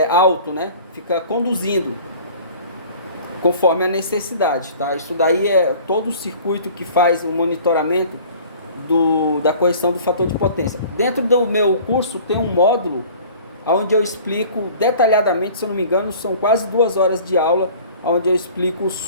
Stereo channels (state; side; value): inverted; both; correlation -0.47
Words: alto, né? Fica conduzindo conforme a necessidade, tá? Isso daí é todo o circuito que faz o monitoramento da correção do fator de potência. Dentro do meu curso tem um módulo onde eu explico detalhadamente, se eu não me engano, são quase 2 horas de aula, onde eu explico